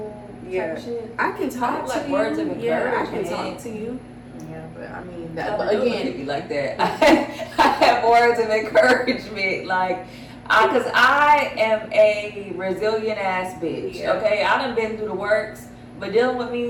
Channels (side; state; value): both; identical; correlation 1.00